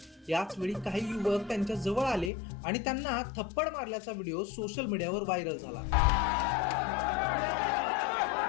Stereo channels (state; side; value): drops out; right; at 2.3 s